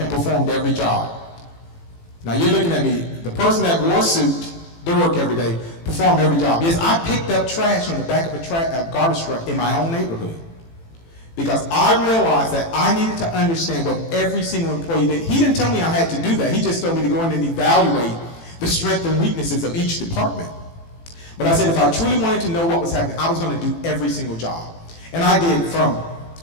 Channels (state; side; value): late; right; 18 ms